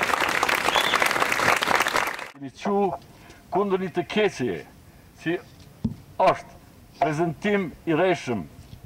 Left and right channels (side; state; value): both; identical; correlation 1.00